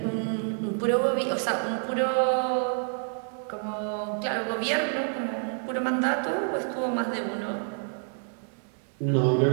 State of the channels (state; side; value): silent; left; 59 dB below the other